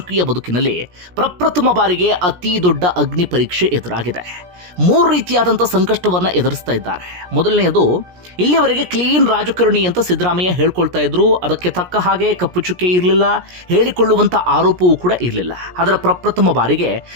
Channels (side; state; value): left; late; 17 ms